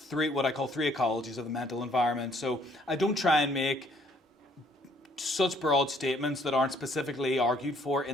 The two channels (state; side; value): normal; both; correlation 0.64